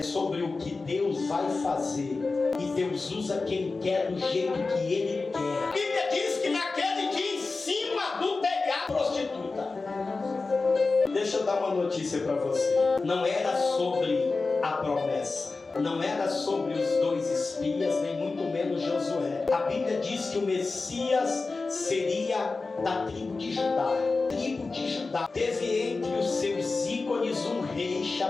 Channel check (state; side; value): quieter; right; 3.9 dB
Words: sobre o que Deus vai fazer. E Deus usa quem quer do jeito que Ele quer. A Bíblia diz que naquele dia, em cima do telhado, prostituta. Deixa eu dar uma notícia para você. Não era sobre a promessa. Não era sobre os 2 espias, nem muito menos Josué. A Bíblia diz que o Messias seria da tribo de Judá. Tribo de Judá. Teve entre os seus ícones um rei